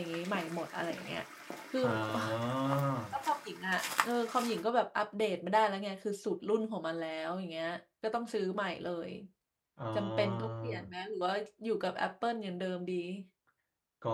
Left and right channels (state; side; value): identical; both; correlation 1.00